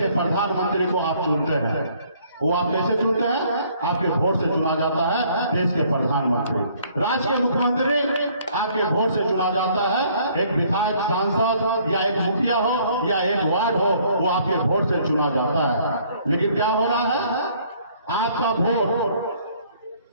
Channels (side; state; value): both; inverted; correlation -0.61